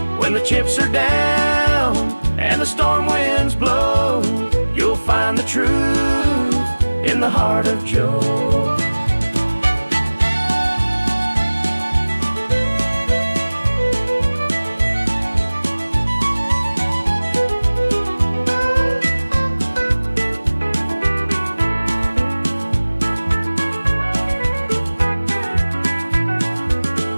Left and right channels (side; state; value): both; inverted; correlation -1.00